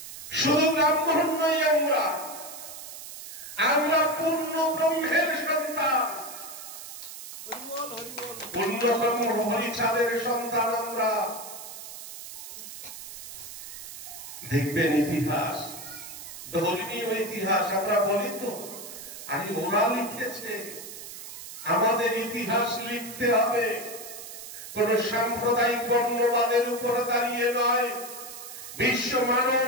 শুধু ব্রাহ্মণ নই, আমরা পূর্ণ ব্রহ্মের সন্তান, পূর্ণ ব্রহ্ম হরিচাঁদের সন্তান আমরা। দেখবেন ইতিহাস, ধর্মীয় ইতিহাস আমরা বলি তো, আরে ওরা লিখেছে, আমাদের ইতিহাস লিখতে হবে। কোন সাম্প্রদায়িক বর্ণবাদের উপরে দাঁড়িয়ে নয়, বিশ্ব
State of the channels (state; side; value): noise; right; hiss, 12 dB below the sound